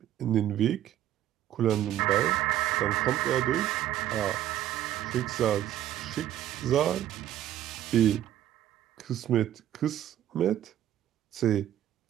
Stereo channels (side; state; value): left; quieter; 12.2 dB